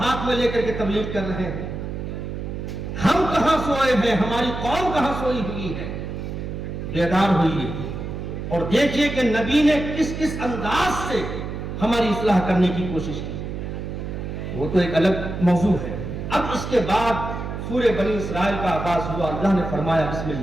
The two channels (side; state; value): right; noise; hum, 6 dB below the sound